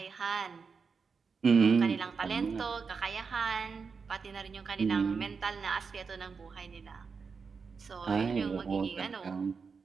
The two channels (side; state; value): left; quieter; 5.3 dB